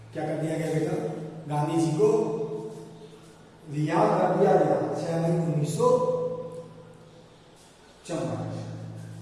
क्या कर दिया गया बेटा? गांधी जी को रिहा कर दिया गया 6 मई 1944।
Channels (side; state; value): both; identical; correlation 1.00